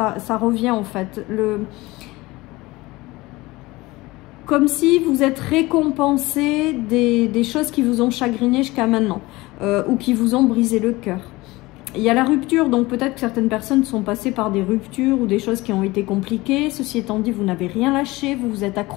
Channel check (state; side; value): quieter; right; 20.7 dB